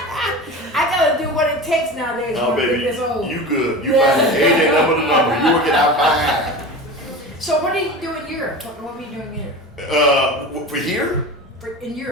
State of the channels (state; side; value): normal; both; correlation 0.31